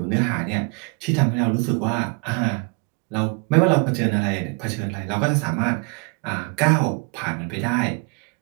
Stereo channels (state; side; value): quieter; left; 32.5 dB